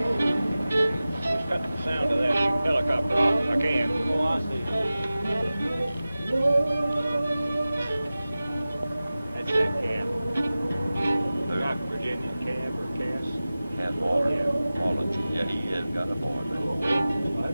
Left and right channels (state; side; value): inverted; both; correlation -0.96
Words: Cut the sound of that helicopter off if I can. Oh, I see. That's that cab. Not Virginia cab or Cass. Cat Waller. Yeah. Olin. Yeah, he has got a board. I